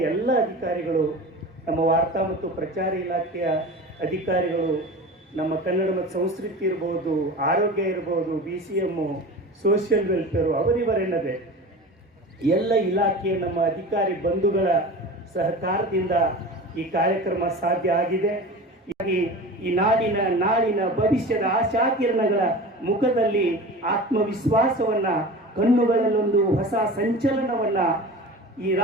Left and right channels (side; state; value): both; normal; correlation 0.34